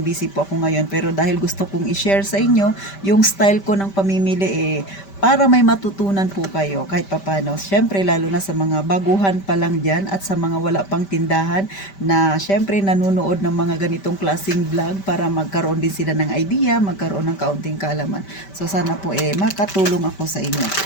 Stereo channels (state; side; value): late; right; 5.1 ms